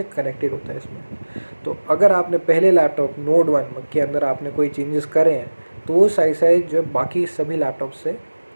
कनेक्टेड होता है इसमें। तो अगर आपने पहले लैपटॉप नोड 1 के अंदर आपने कोई चेंजेस करे हैं, तो वो साइड साइड जो बाकी सभी लैपटॉप से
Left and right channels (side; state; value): both; inverted; correlation -1.00